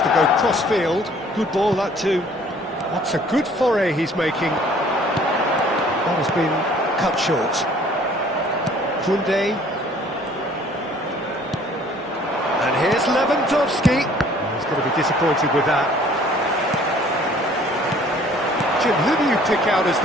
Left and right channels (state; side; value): normal; both; correlation 0.55